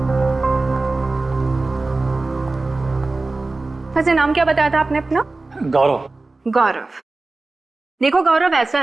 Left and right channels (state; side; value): quieter; left; 3.3 dB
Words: वैसे नाम क्या बताया था आपने अपना? गौरव। गौरव। देखो गौरव, ऐसा